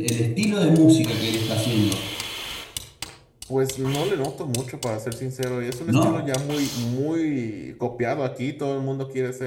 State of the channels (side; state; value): both; identical; correlation 1.00